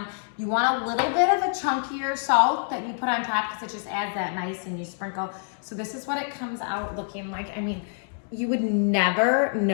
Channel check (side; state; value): right; silent; digital silence